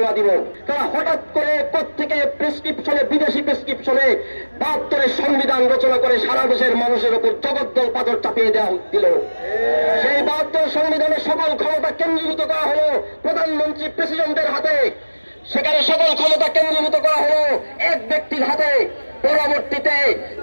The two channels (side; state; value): both; inverted; correlation -1.00